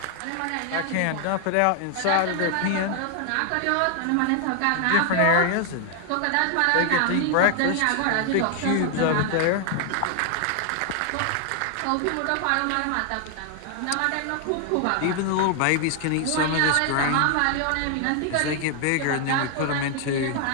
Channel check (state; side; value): different; both; correlation 0.00